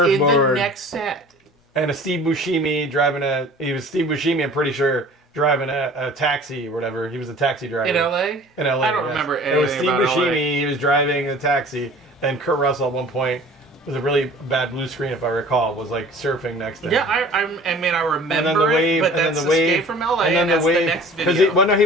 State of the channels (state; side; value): normal; both; correlation 0.46